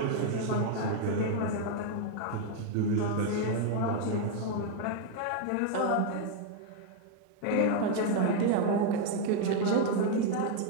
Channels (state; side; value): different; both; correlation 0.01